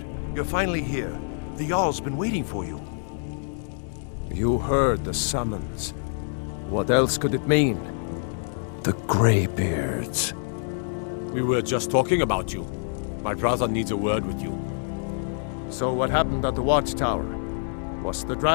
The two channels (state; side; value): silent; right; digital silence